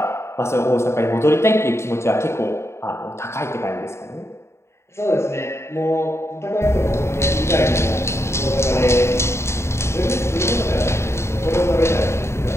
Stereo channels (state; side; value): late; right; 0.13 ms